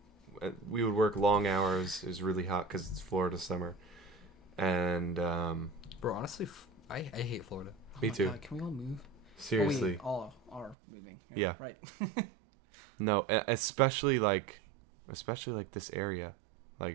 We would work long hours. It was really hot because it's Florida summer. And Bro, honestly, I hate Florida. Me my too. God, can we all move? seriously. Oh, we all are moving. Yeah. Right. No, especially like this area.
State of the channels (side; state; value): left; drops out; at 10.8 s